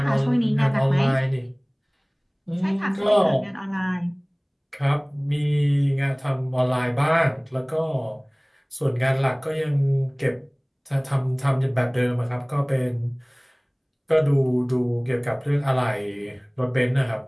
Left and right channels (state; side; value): identical; both; correlation 1.00